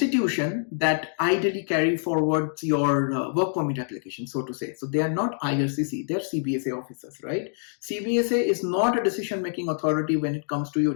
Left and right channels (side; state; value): right; silent; digital silence